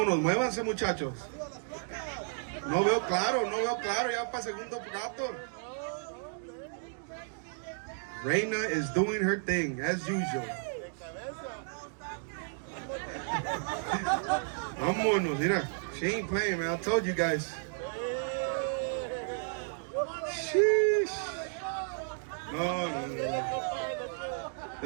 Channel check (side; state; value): left; silent; digital silence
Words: muévanse, muchachos. No veo claro, ya para segundo plato. Raina is doing her thing, as usual. Vámonos, mira. She ain't playing, man. I told you guys. Sheesh. No.